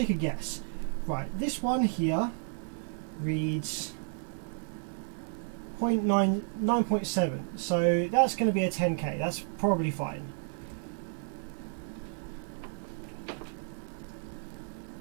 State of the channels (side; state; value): left; silent; 56 dB below the other